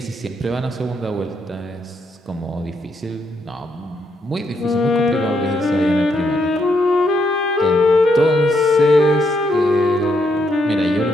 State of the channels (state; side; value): normal; both; correlation 0.76